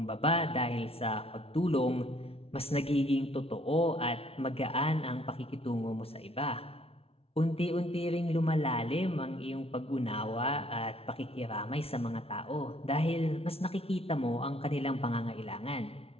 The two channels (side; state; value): right; late; 0.28 ms